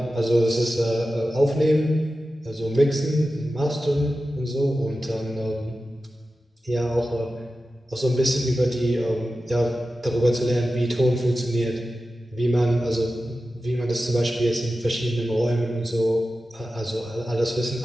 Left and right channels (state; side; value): normal; both; correlation 0.93